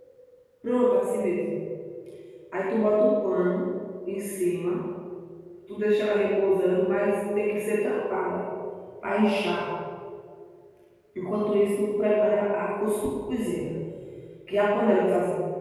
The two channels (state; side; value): identical; both; correlation 1.00